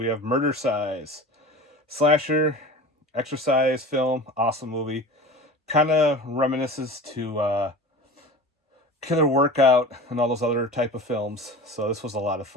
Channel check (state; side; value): normal; both; correlation 0.36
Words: have Murder Size. Slasher, exercise film, awesome movie. Kind of reminisces to Killer Workout and all those other type of films. So this was a lot of